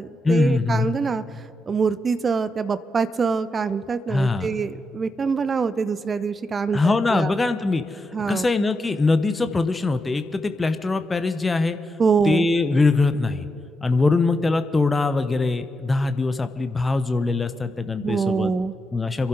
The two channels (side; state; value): both; normal; correlation 0.85